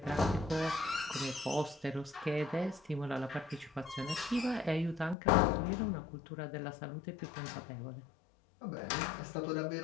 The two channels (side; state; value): right; drops out; at 5.2 s